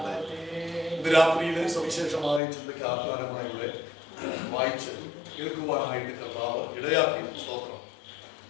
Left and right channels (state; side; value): drops out; right; at 2.4 s